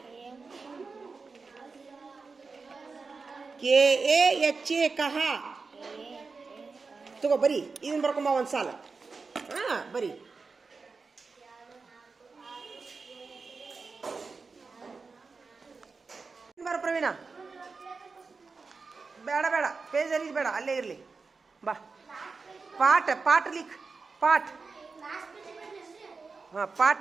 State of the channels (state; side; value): quieter; left; 4.4 dB